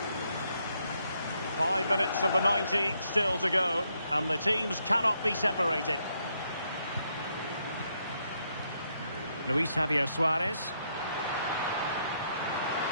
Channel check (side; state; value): both; inverted; correlation -0.76